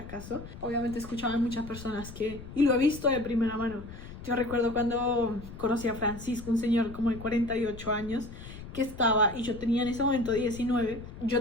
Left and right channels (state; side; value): noise; left; rumble, 13 dB below the sound